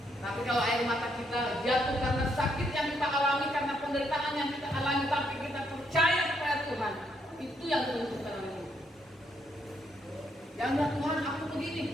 Tapi kalau air mata kita jatuh karena sakit yang kita alami, karena penderitaan yang kita alami, tapi kita percaya kepada Tuhan, itu yang menentukan oleh Tuhan. Jangan Tuhan aku begini,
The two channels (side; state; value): both; normal; correlation 0.75